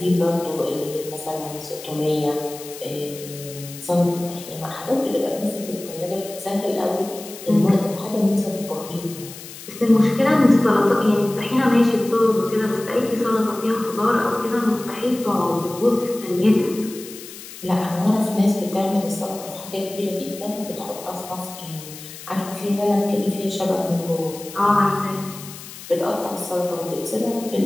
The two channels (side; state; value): left; noise; hiss, 14 dB below the sound